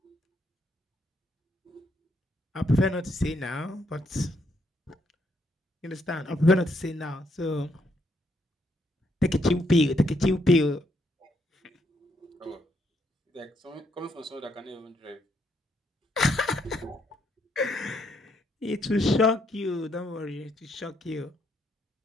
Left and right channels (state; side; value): normal; both; correlation 0.74